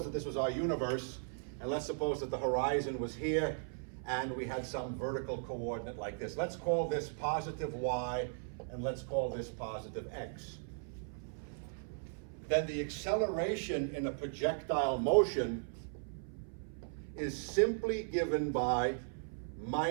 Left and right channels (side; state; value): left; silent; 53 dB below the other